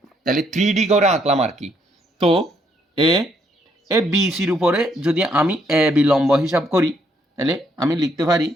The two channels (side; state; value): both; normal; correlation 0.71